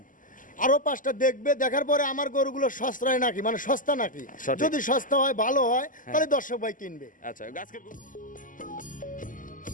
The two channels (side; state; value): right; late; 0.38 ms